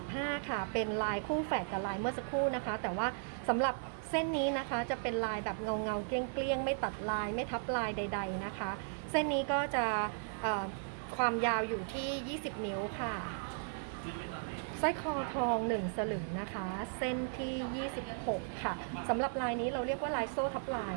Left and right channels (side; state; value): left; silent; 54 dB below the other